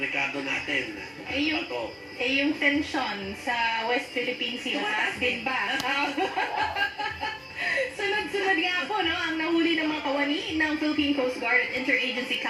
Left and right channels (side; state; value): both; identical; correlation 1.00